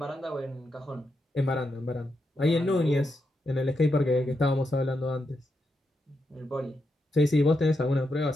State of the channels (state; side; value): normal; both; correlation 0.84